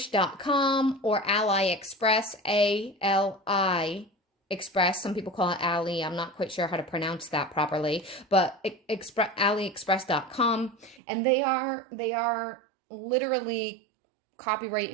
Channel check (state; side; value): drops out; left; at 11.0 s